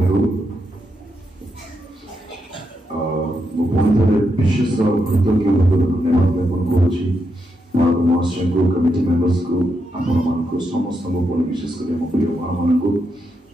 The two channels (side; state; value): both; normal; correlation 0.83